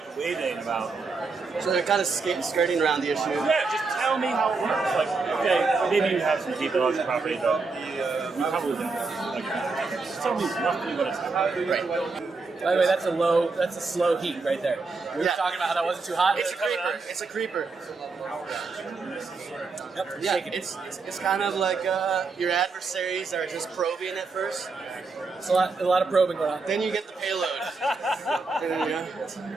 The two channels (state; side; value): quieter; left; 4.2 dB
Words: waving about. So they're kind of skirting around the issue. Yeah, just tell me how it works. Like, okay, maybe you have some deep intellectual property, but you probably don't. Like, just tell me roughly what it's like. Right. By the way, that's a slow heat right there. We were talking about how that wasn't too hot. It's a creeper. It's a creeper. Yep, Yeah, shaking. it's kind of like your adversaries are just probing at first. It's a lot of probing going on. Then you get the payload.